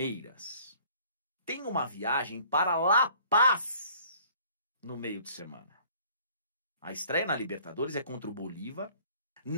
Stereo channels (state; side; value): inverted; both; correlation -0.55